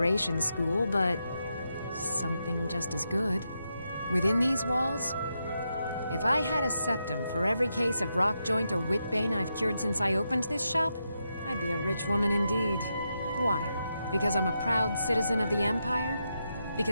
School, but... something just as good. Within these walls... If I had a septum for every case of rockjoint or whitbane I've cured since I opened this shop, I'd be a rich woman indeed. Why? Because I'm a proud citizen of the Empire?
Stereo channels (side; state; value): both; inverted; correlation -0.85